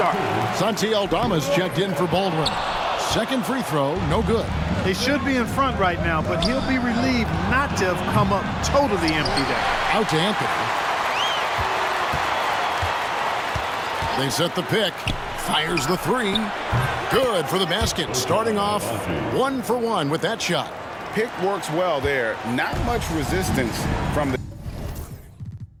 Santi Aldama's checked in for Baldwin. Second free throw, no good. They should be in front right now, but he'll be relieved not to have come up totally empty there. Out to Anthony. They set the pick. Fires the 3. Good for the basket. Starting off 1 for 1 with that shot. Pick works well there. Not much resistance from the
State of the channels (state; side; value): identical; both; correlation 1.00